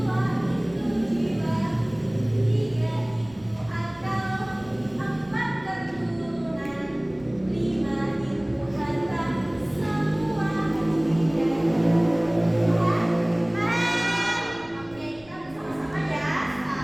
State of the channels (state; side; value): noise; right; rumble, 25 dB below the sound